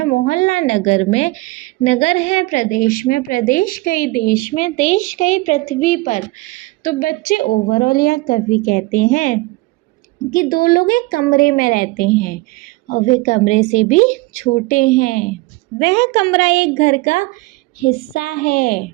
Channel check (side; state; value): left; quieter; 21.9 dB